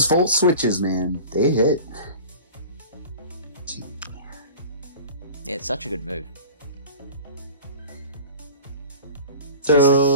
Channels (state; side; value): inverted; both; correlation -0.38